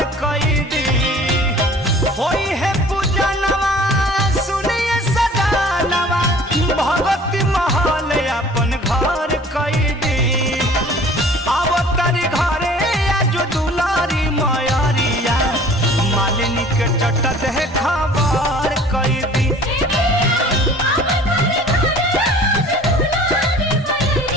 कैदी होई है पूजनवा सुनिए सदानवा भगवती महल अपन घर कैदी अवतारी घरे आज दुलारी मयरिया मालिनी के चट दे खबर कैदी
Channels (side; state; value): both; normal; correlation 0.48